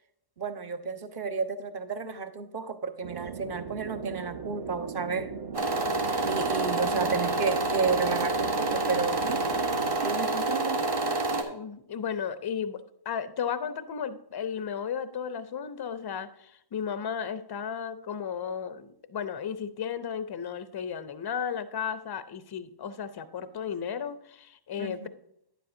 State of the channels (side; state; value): right; late; 1.1 ms